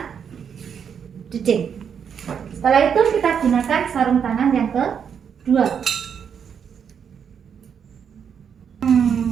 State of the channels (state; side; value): quieter; left; 7.4 dB